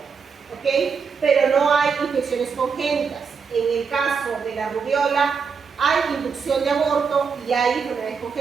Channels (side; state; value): left; quieter; 5.7 dB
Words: ¿ok?, pero no hay infecciones congénitas. En el caso de la rubiola hay inducción de aborto y hay enfermedades